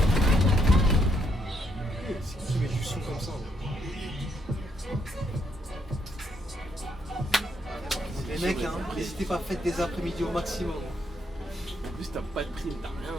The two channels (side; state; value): both; normal; correlation 0.74